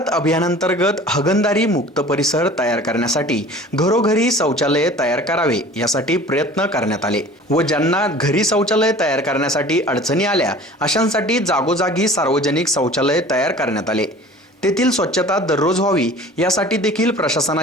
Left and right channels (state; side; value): normal; both; correlation 0.44